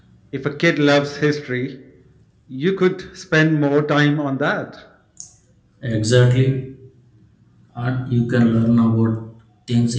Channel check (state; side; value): identical; both; correlation 1.00